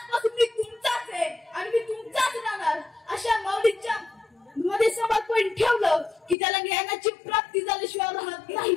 मी तुमचाच आहे आणि मी तुमचाच राहणार अशा माऊलींच्या मध्ये समर्पण ठेवलं की त्याला ज्ञानाची प्राप्ती झाल्याशिवाय राहत नाही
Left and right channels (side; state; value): right; drops out; at 6.4 s